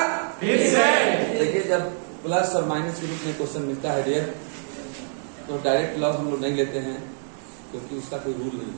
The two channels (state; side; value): silent; left; 58 dB below the other